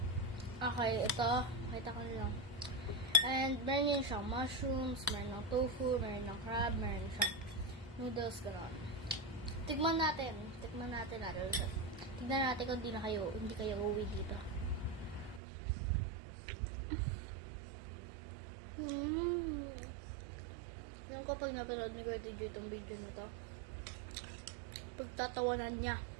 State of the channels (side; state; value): left; drops out; at 15.4 s